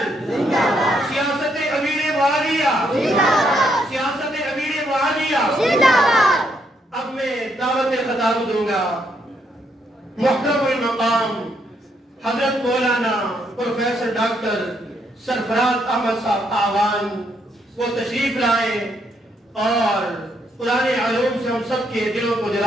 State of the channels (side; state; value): both; normal; correlation 0.75